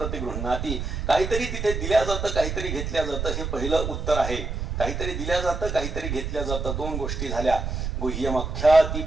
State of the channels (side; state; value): right; noise; rumble, 4 dB below the sound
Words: काहीतरी तिथे दिल्या जातं काहीतरी घेतल्या जातं हे पहिलं उत्तर आहे. काहीतरी दिल्या जातं काहीतरी घेतल्या जातं 2 गोष्टी झाल्या. गुह्यमख्याति